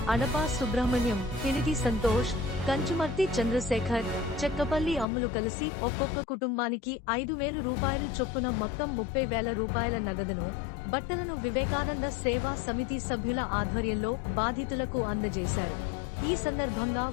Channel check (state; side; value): drops out; right; at 5.1 s